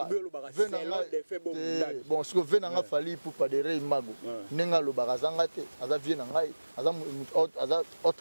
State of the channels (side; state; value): both; inverted; correlation -1.00